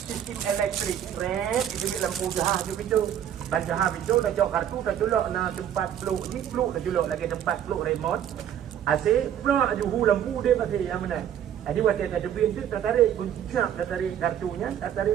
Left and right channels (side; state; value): left; quieter; 10.0 dB